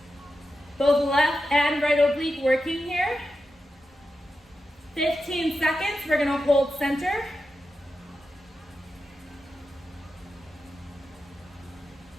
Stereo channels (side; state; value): both; normal; correlation 0.90